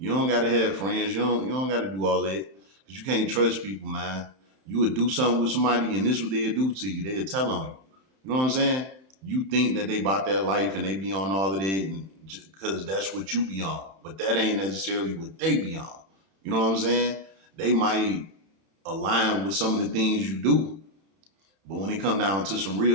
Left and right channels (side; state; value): left; late; 31 ms